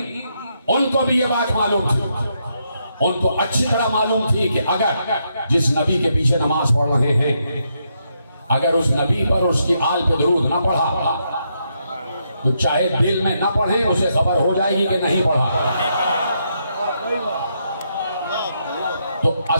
ان کو بھی یہ بات معلوم تھی. ان کو اچھی طرح معلوم تھی کہ اگر جس نبی کے پیچھے نماز پڑھ رہے ہیں، اگر اس نبی پر اس کی آل پہ درود نہ پڑھا تو چاہے دل میں نہ پڑھیں، اسے خبر ہو جائے گی کہ نہیں پڑھا. تو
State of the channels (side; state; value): both; inverted; correlation -0.79